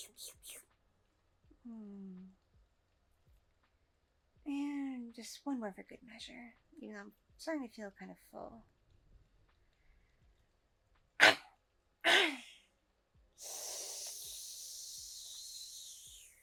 And just one more for good measure. You know, I'm starting to feel kind of full.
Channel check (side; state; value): both; identical; correlation 1.00